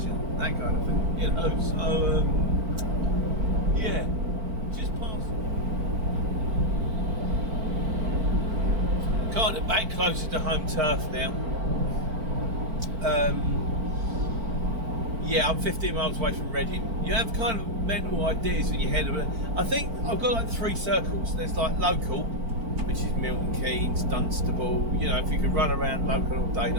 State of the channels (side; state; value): left; late; 4.5 ms